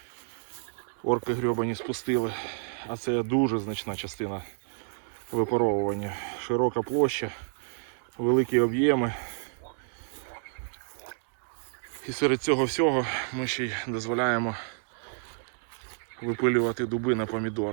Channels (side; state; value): left; silent; digital silence